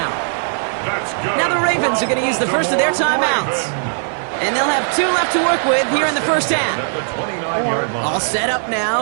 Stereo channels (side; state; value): left; silent; 58 dB below the other